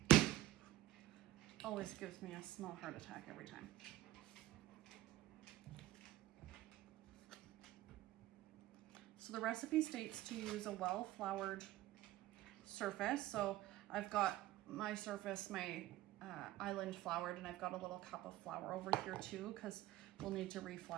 Always gives me a small heart attack every time. So the recipe states to use a well-floured surface. So I've got my surface, my island floured, and I've got a little cup of flour over here too, because we'll need to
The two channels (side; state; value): left; quieter; 15.7 dB